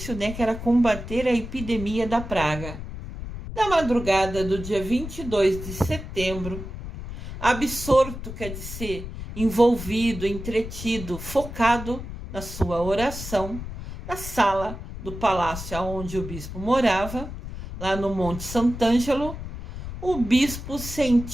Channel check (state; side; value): noise; left; rumble, 9 dB below the sound